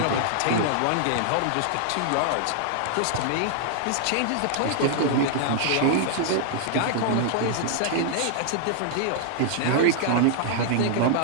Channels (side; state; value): both; different; correlation -0.01